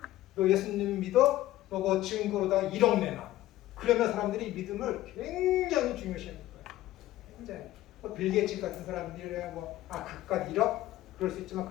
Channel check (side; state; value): right; quieter; 15.2 dB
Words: 너 예수님 믿어? 너그 증거로다가 1억 내놔. 그러면 사람들이 믿음을 굉장히 중요시하는 거예요. 굉장히. 빌 게이츠 같은 사람들이 그깟 1억? 그럴 수 있지만